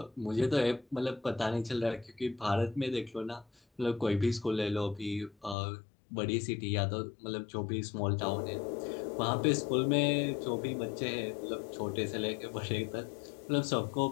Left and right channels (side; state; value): right; drops out; at 5.6 s